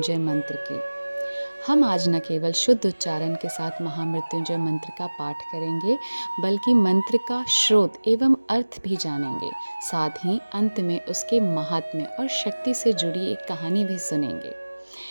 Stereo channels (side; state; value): both; inverted; correlation -1.00